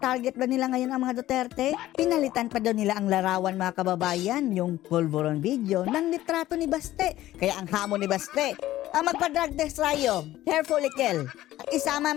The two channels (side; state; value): right; quieter; 14.9 dB